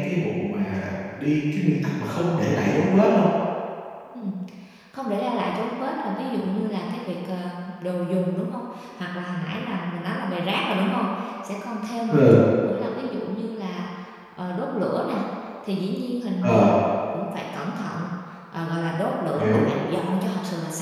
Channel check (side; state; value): both; identical; correlation 1.00